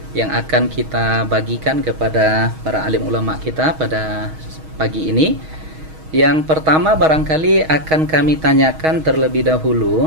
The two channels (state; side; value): late; left; 6.3 ms